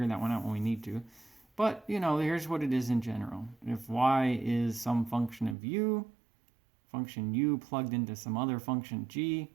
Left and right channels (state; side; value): drops out; left; at 5.6 s